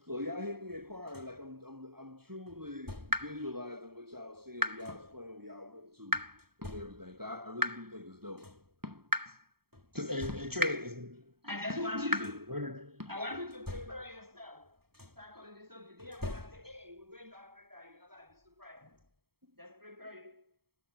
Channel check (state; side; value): late; left; 0.95 ms